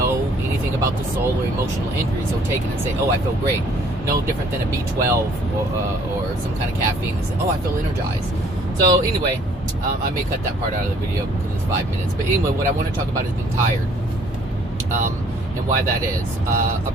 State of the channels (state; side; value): normal; both; correlation 0.59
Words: anything about the soul or emotional injuries will take it and say, oh, I feel great. No different than a B12 or some kind of caffeine and say, oh, I feel energized. So anyway, I may cut that part out of the video because it's 5 minutes. But anyway, what I want to talk about is being tired, and why that is. A